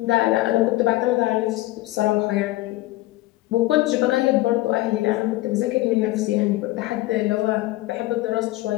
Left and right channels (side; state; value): right; quieter; 18.1 dB